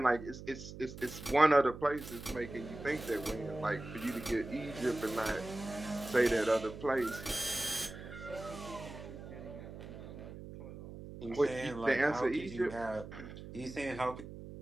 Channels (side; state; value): right; noise; hum, 12 dB below the sound